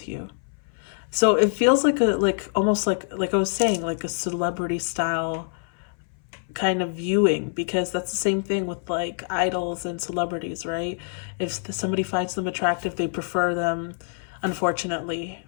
you. So it feels like almost like I was saying, like a celebrity style kind of viewing, because that's the same thing with like idols and celebrities, right? If somebody finds them attractive, they prefer them, unfortunately,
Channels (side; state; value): right; silent; 59 dB below the other